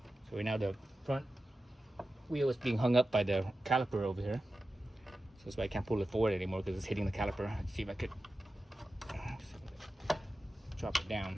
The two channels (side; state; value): both; normal; correlation 0.93